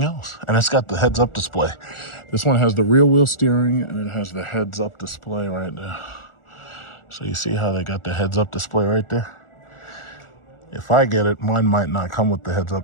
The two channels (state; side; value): late; right; 1.4 ms